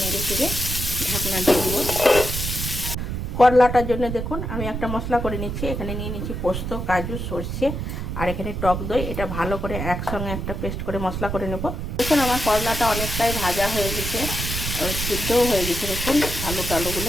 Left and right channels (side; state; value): right; noise; rumble, 4 dB below the sound